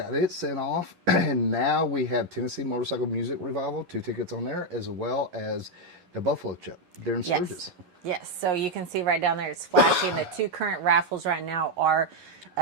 it sent off. And now we have Tennessee Motorcycle Music Revival, 2 tickets on there, as well as the Buffalo Chip, Darren Sturgis. Yes, so you can see right down there, it's flashing. The 2 current raffles right now are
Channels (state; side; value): late; left; 11 ms